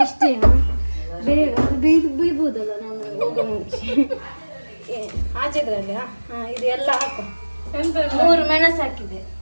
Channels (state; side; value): inverted; both; correlation -1.00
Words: ಅಷ್ಟೇ. ಬೇಗ ಬೀಳ್ಬೋದಲ್ಲ ನಾನು ಹೋಗೋ ಮುಂಚೆ. ಆಚೆದ್ರಲ್ಲಿ ಇದು ಎಲ್ಲ ಹಾಕು. 3 ಮೆಣಸು ಹಾಕಿದೆ.